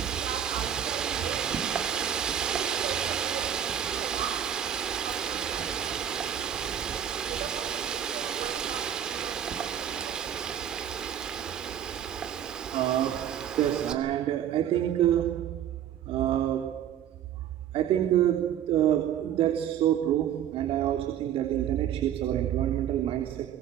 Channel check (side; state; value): left; quieter; 9.9 dB